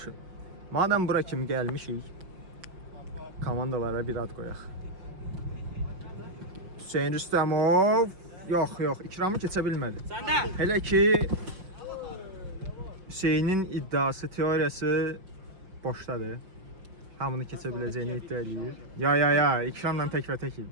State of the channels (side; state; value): left; late; 5.8 ms